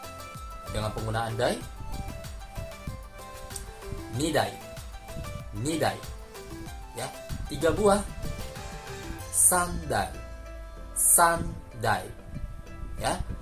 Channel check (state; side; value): identical; both; correlation 1.00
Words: dengan penggunaan dai, nidai, ya. 3 buah, sandai, ya.